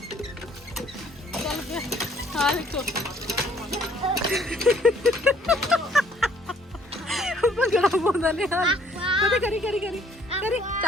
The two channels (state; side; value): normal; both; correlation 0.61